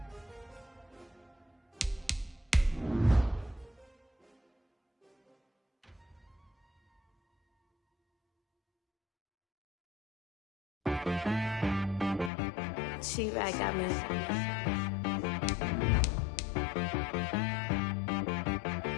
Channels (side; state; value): right; drops out; at 12.3 s